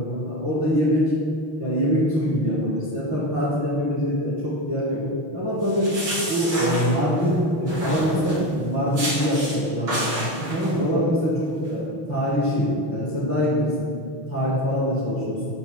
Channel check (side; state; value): left; late; 6.3 ms